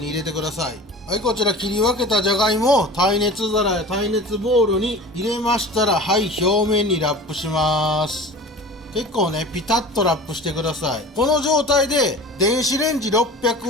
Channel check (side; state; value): both; normal; correlation 0.38